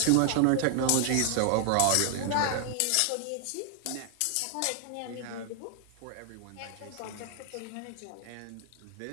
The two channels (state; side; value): different; both; correlation 0.00